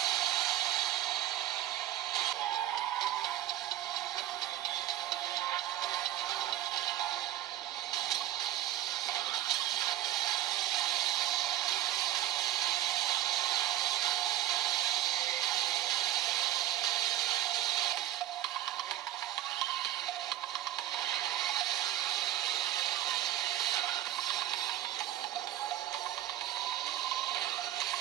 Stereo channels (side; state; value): left; quieter; 13.1 dB